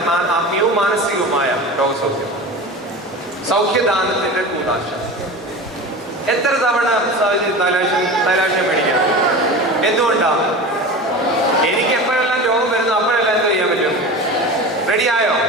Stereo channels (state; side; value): normal; both; correlation 0.31